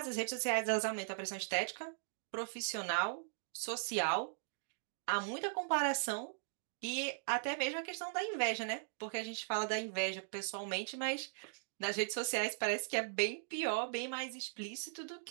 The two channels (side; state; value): left; silent; digital silence